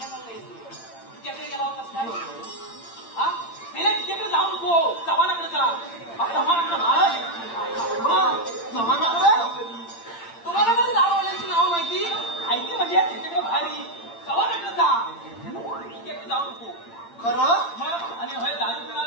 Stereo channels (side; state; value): right; late; 8.8 ms